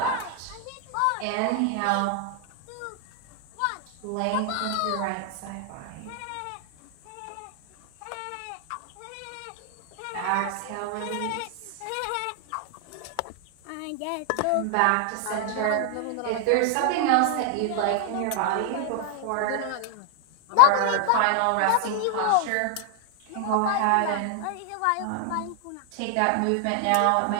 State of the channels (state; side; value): different; both; correlation 0.00